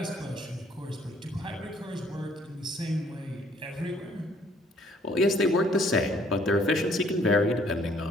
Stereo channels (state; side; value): normal; both; correlation 0.62